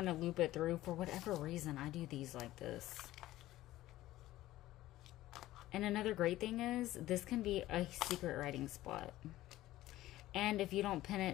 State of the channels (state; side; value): quieter; right; 15.6 dB